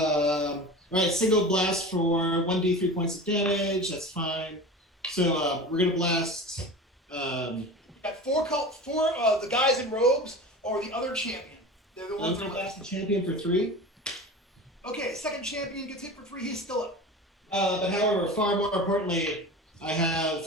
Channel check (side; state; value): both; normal; correlation 0.33